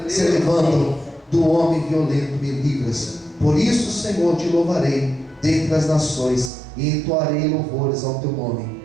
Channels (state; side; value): drops out; left; at 6.5 s